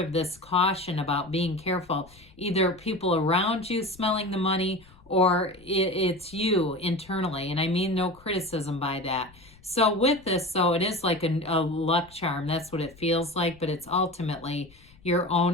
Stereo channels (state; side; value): noise; left; rumble, 26 dB below the sound